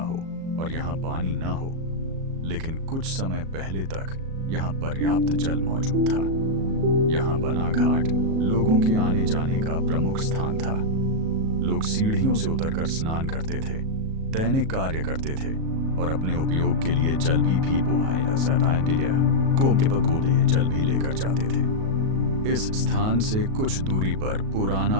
हो और यहाँ पानी न हो, लेकिन कुछ समय पहले तक यहाँ पर्याप्त जल मौजूद था। यहाँ बना घाट लोगों के आने जाने का प्रमुख स्थान था। लोग सीढ़ियों से उतरकर स्नान करते थे, दैनिक कार्य करते थे और अपने उपयोग के लिए जल भी लेकर जाते थे। इस स्थान से कुछ दूरी पर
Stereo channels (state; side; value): late; left; 37 ms